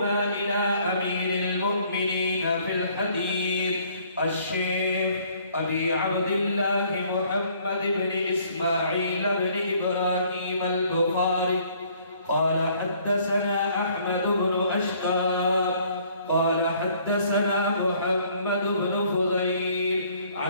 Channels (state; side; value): inverted; both; correlation -0.61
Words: إلى أمير المؤمنين في الحديث الشيخ أبي عبد الله محمد بن إسماعيل بن إبراهيم البخاري قال حدثنا أحمد بن أشقى قال حدثنا محمد بن فضيل